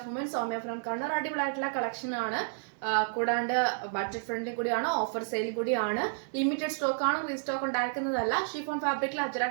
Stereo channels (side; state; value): left; silent; 57 dB below the other